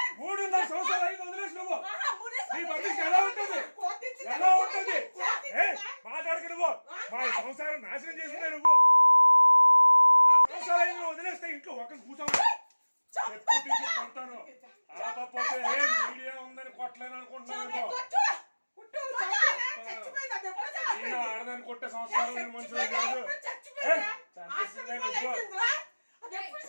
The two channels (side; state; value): both; inverted; correlation -1.00